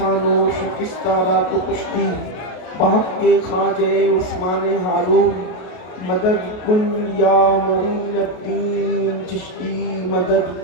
شکستہ را کو کشتی بحق کے خواجہ عثمان ہارون مدد کن یا معین الدین چشتی مدد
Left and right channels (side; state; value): right; late; 33 ms